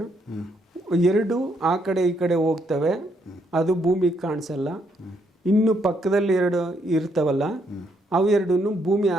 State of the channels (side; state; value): both; normal; correlation 0.73